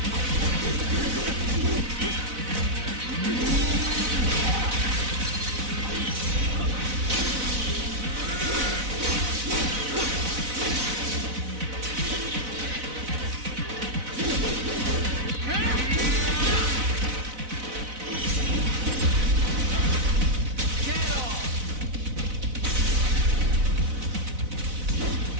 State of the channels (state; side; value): late; left; 4.0 ms